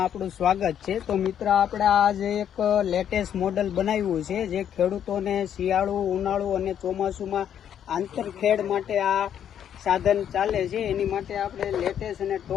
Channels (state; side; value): quieter; right; 9.4 dB